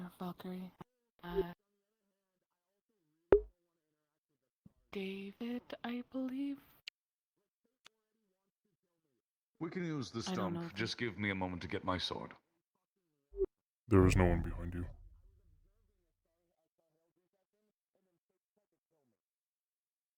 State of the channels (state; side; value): identical; both; correlation 1.00